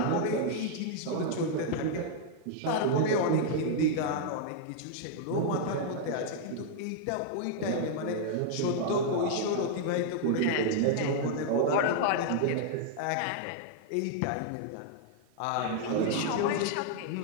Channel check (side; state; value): both; different; correlation -0.01